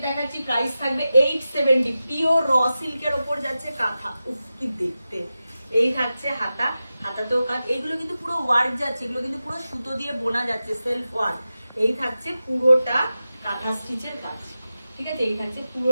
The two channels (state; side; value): inverted; both; correlation -0.93